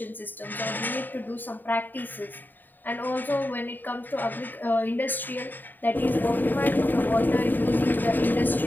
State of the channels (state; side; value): late; right; 0.090 ms